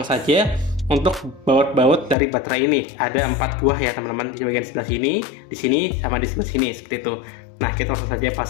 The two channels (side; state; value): right; drops out; at 2.1 s